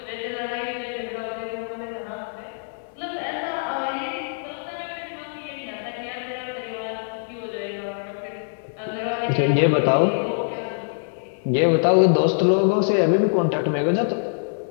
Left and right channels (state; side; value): silent; right; digital silence